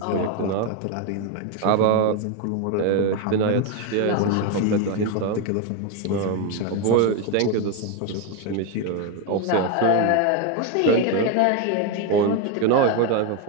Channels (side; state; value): both; different; correlation 0.02